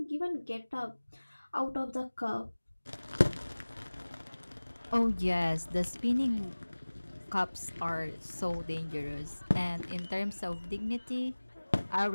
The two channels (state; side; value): inverted; both; correlation -1.00